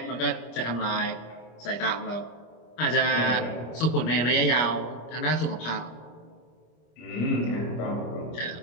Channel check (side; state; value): right; late; 25 ms